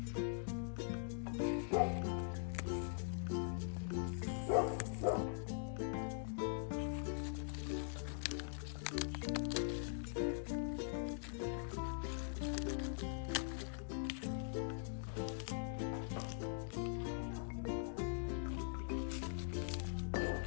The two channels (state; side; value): silent; right; digital silence